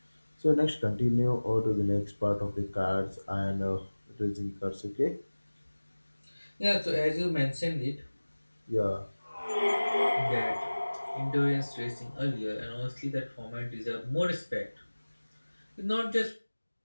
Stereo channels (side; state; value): both; inverted; correlation -1.00